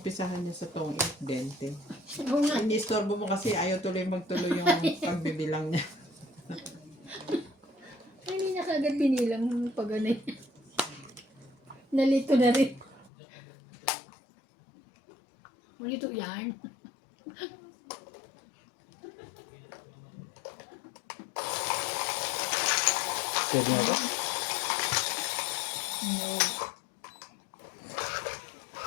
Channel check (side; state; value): right; drops out; at 13.1 s